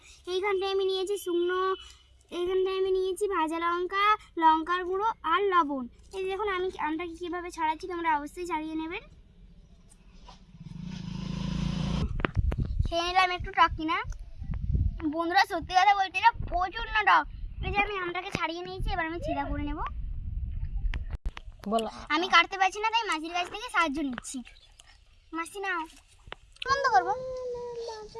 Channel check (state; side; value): identical; both; correlation 1.00